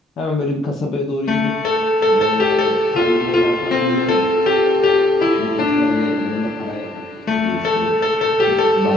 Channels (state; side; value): normal; both; correlation 0.68